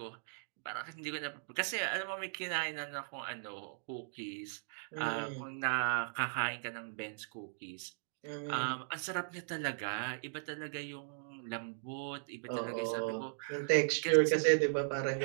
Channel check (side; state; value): left; silent; digital silence